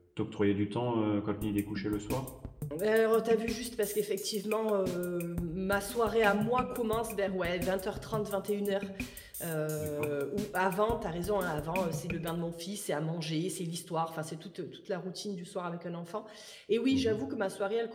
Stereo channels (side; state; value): both; identical; correlation 1.00